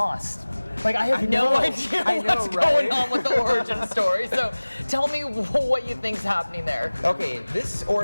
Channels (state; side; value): inverted; both; correlation -1.00